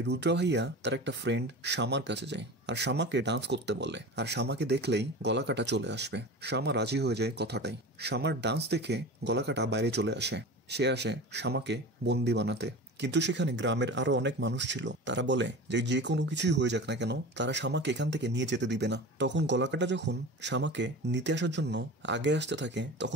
রুদ্র ভাইয়া তার একটা ফ্রেন্ড শামার কাছে যায় আর শামাকে ডান্স করতে বলে। আর শামাকে দেখলেই গলাকাটা চলে আসবে। শামা রাজি হয়ে যায় কথাটাই। শামার ডান্স দেখে গলাকাটা বাইরে চলে আসে। সে আসে শামাকে বন্দি বানাতে। কিন্তু সেখানে গ্রামের আরো অনেক মানুষ ছিল। তারা বলে যে যে কোনো কিছুই হয়ে যাক না কেন তারা শামাকে এখান থেকে নিয়ে যেতে দিবে না। তখন গলাকাটা যখন শামাকে নিতে আসার জন্য আগে আসতে থাকে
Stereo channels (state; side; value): normal; both; correlation 0.32